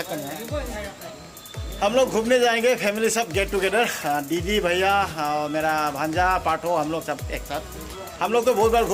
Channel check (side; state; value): both; identical; correlation 1.00